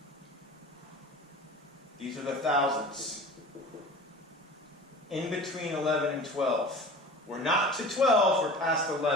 These are the thousandths. In between 11 and 12. We're not to 12, we're past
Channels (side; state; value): both; normal; correlation 0.39